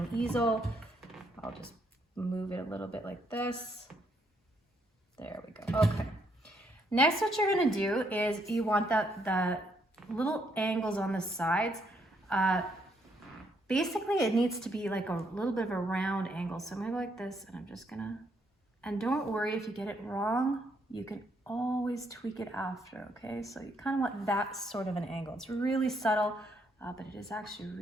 easel. I'll just move it a little bit like this. There we go. Okay. Next, what you're gonna do is you want the little angles on the sides. Basically, it needs to be like a little bit of a round angle. So I'm gonna go like this, and I'm just gonna, and don't worry if you get it wrong, you can always tweak it after, okay? So you kind of want that sort of an angle. It's really subtle, but it is actually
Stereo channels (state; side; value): normal; both; correlation 0.73